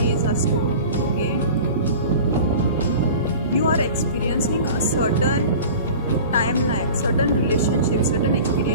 are stored. Okay, you are experiencing a certain timeline, certain relationships, certain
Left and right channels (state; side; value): inverted; both; correlation -0.38